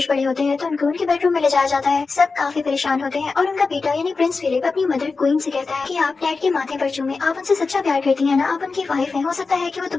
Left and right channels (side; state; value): right; quieter; 4.3 dB